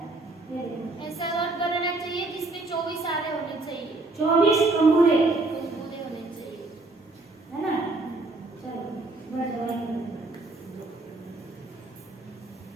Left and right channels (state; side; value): quieter; left; 3.1 dB